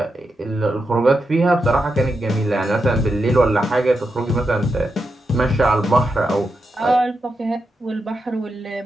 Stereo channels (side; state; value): both; normal; correlation 0.86